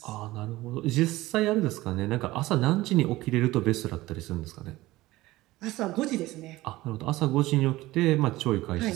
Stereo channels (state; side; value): quieter; left; 18.1 dB